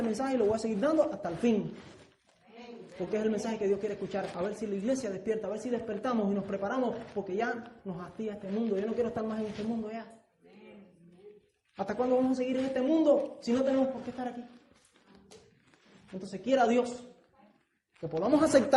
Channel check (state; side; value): identical; both; correlation 1.00